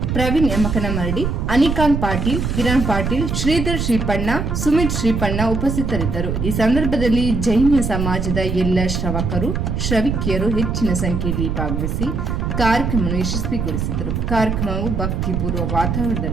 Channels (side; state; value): right; noise; rumble, 1 dB below the sound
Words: ಪ್ರವೀಣ್ ಯಮಕನಮರಡಿ, ಅನಿಕಾಂತ್ ಪಾಟೀಲ್, ಕಿರಣ್ ಪಾಟೀಲ್, ಶ್ರೀಧರ್ ಶ್ರೀಪಣ್ಣ, ಸುಮಿತ್ ಶ್ರೀಪಣ್ಣ ಉಪಸ್ಥಿತರಿದ್ದರು. ಈ ಸಂದರ್ಭದಲ್ಲಿ ಜೈನ ಸಮಾಜದ ಎಲ್ಲ ಶ್ರವಕರು, ಶ್ರವಿಕಿಯರು ಹೆಚ್ಚಿನ ಸಂಖ್ಯೆಯಲ್ಲಿ ಭಾಗವಹಿಸಿ ಕಾರ್ಯಕ್ರಮವನ್ನು ಯಶಸ್ವಿಗೊಳಿಸಿದರು. ಕಾರ್ಯಕ್ರಮವು ಭಕ್ತಿಪೂರ್ವ